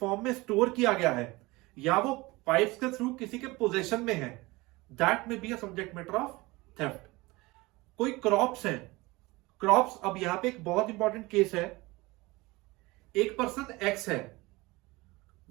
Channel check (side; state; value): left; quieter; 22.1 dB